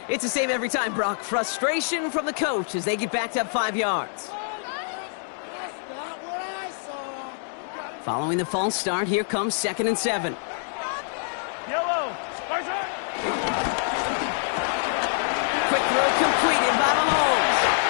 it's the same every time, Brock. Frustration from the coach as they get backed up 5 yards. Following the false start, here comes 2nd and 7. Yellow. Quick throw completed by Mahomes.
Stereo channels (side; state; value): right; silent; digital silence